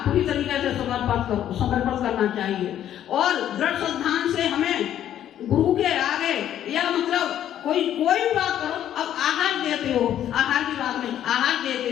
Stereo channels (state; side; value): quieter; right; 11.0 dB